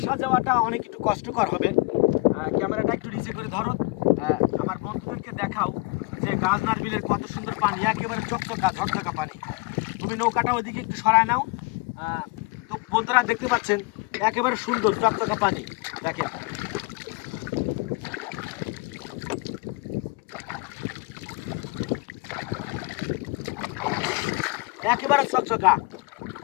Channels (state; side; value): quieter; right; 24.5 dB